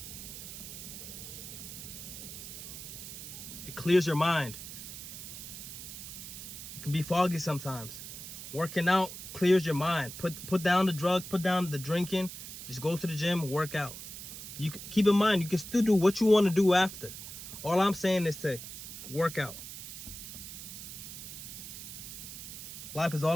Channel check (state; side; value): noise; right; hiss, 10 dB below the sound